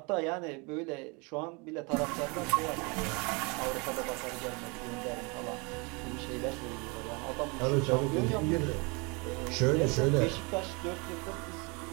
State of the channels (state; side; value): quieter; left; 30.1 dB